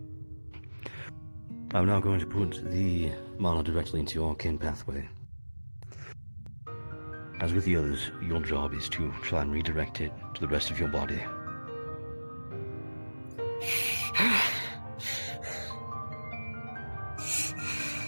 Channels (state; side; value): inverted; both; correlation -1.00